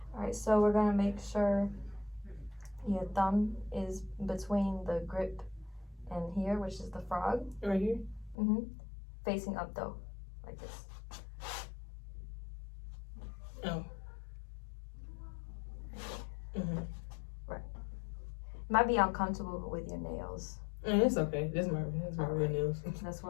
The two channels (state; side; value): drops out; right; at 8.3 s